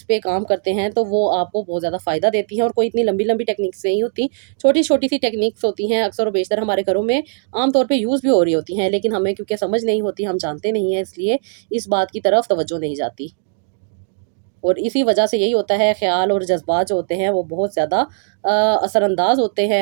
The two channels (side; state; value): left; silent; digital silence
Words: پہ کام کرتے ہیں تو وہ آپ کو بہت زیادہ فائدہ دیتی ہیں، اور کوئی اتنی لمبی لمبی ٹیکنیکس نہیں ہوتی، چھوٹی چھوٹی سی ٹیکنیکس ہوتی ہیں، اکثر و بیشتر ہمارے گھروں میں عام طور پہ یوز بھی ہو رہی ہوتی ہیں، لیکن ہمیں کیونکہ سمجھ نہیں ہوتی، ہم جانتے نہیں ہیں، اس لیے اس بات کی طرف توجہ نہیں جاتی، اور اسی وجہ سے یہی ہوتا ہے خیال اور جذبات جو ہوتے ہیں وہ بہت زیادہ اثر انداز ہوتے ہیں